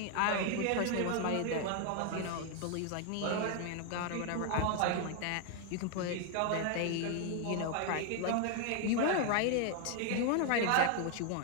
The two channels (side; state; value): both; different; correlation 0.01